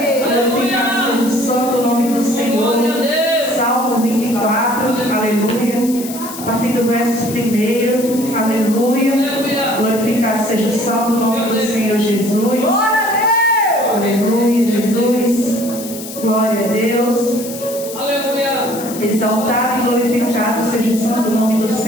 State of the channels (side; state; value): left; noise; hiss, 12 dB below the sound